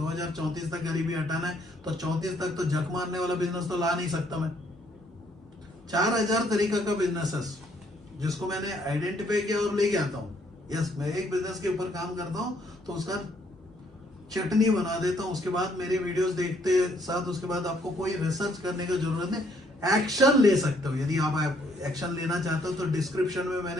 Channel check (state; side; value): normal; both; correlation 0.67